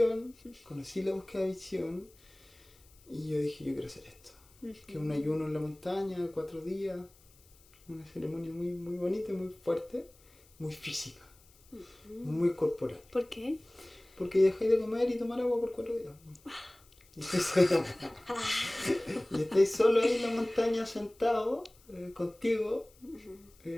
conocí la búsqueda de visión, y yo dije, yo quiero hacer esto. Que es un ayuno en la montaña de 4 días, una ceremonia muy, muy bonita, muy fuerte, muy física, muy corporal. ¿Por qué? Porque dejáis de comer y tomar agua por 4 días. Y estáis solo ahí en la montaña sentado, contigo,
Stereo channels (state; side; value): noise; left; hiss, 28 dB below the sound